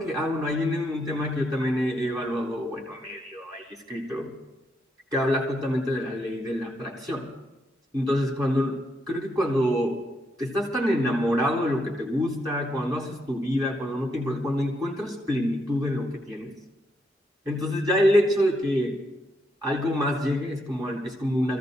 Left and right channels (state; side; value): normal; both; correlation 0.78